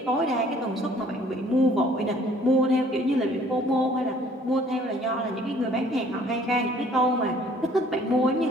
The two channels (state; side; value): normal; both; correlation 0.57